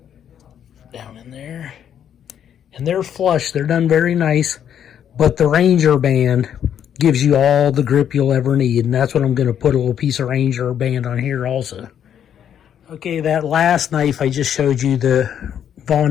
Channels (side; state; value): right; quieter; 9.2 dB